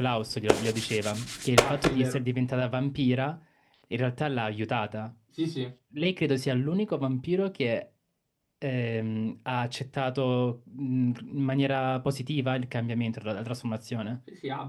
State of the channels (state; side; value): identical; both; correlation 1.00